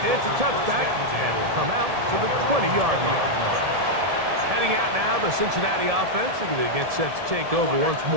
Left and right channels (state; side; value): late; left; 1.7 ms